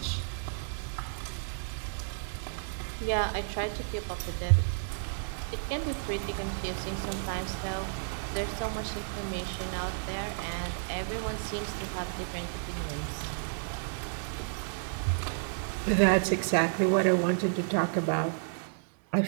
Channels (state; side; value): silent; left; digital silence